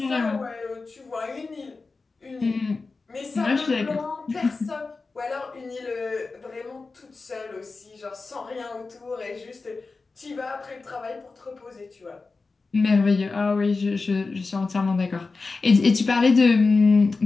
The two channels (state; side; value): quieter; right; 4.0 dB